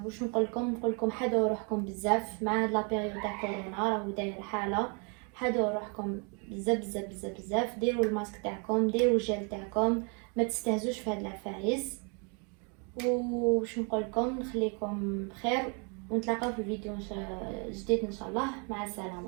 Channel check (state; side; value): quieter; left; 35.8 dB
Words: واش نقول لكم حدوا روحكم بزاف مع هاد لا بيريود تاع كورونا راهو داير حاله. حدوا روحكم بزاف بزاف بزاف بزاف، ديروا الماسك تاعكم، ديروا الجل تاعكم، ما تستهزوش في هاد العفايس. وش نقول لكم نخليكم بخير ونتلاقاو في فيديو جديد ان شاء الله. مع